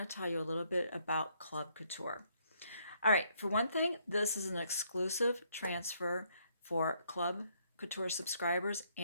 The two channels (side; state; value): both; inverted; correlation -0.70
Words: to tell you a little bit about Club Couture. All right, for one thing, this is an exclusive transfer for Club Couture subscribers